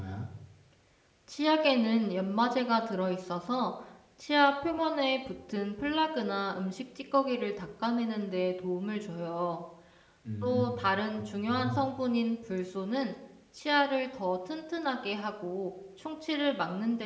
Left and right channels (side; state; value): both; identical; correlation 1.00